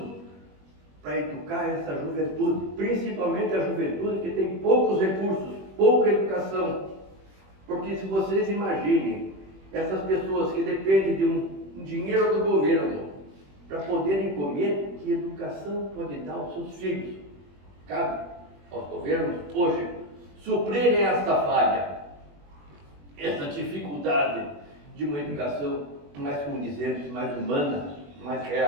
para educar essa juventude, principalmente a juventude que tem poucos recursos, pouca educação. Porque se vocês imaginem, essas pessoas que dependem de um dinheiro do governo para poderem comer, que educação pode dar aos seus filhos? Cabe aos governos hoje suprirem esta falha, essa dificuldade de uma educação mais condizente, mais humana, mais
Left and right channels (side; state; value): left; late; 21 ms